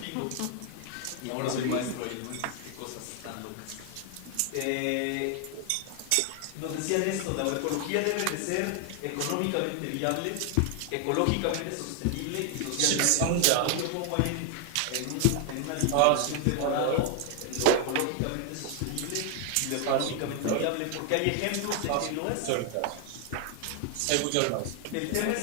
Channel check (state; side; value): different; both; correlation 0.00